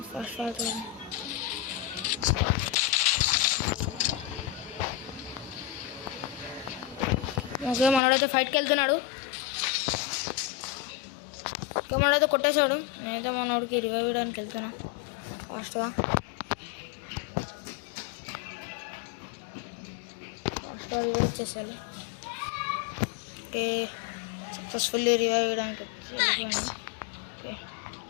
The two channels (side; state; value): right; drops out; at 8.0 s